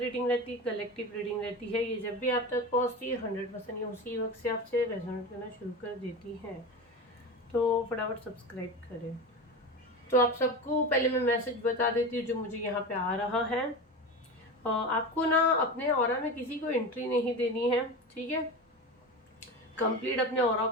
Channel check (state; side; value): normal; both; correlation 0.26